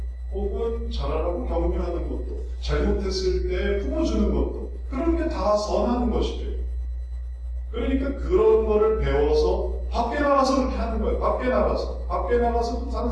혹은 잘하라고 격려하는 것도, 잘못했을 때 품어주는 것도, 그런 게 다 선하는 것이죠. 그러니까 그런 거를 배워서 밖에 나가서 그렇게 하는 거예요. 밖에 나가서도 다른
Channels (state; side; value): identical; both; correlation 1.00